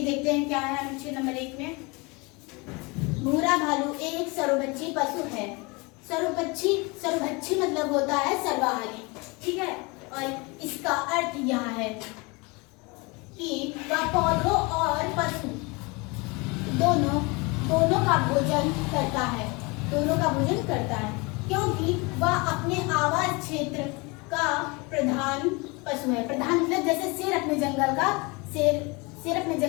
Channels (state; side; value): quieter; right; 27.3 dB